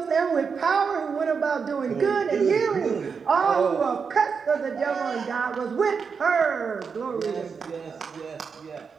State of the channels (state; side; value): quieter; left; 5.8 dB